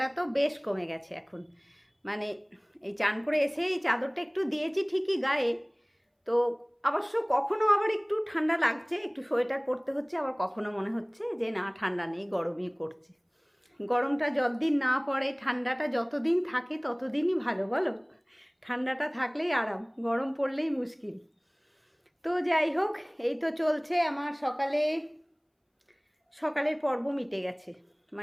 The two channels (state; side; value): identical; both; correlation 1.00